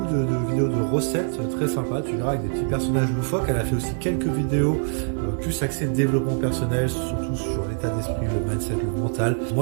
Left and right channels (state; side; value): silent; left; digital silence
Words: de vidéos de recettes très sympas, tu verras, avec des petits personnages loufoques. Elle a fait aussi quelques vidéos plus axées développement personnel, surtout sur l'état d'esprit, le mindset, le mental.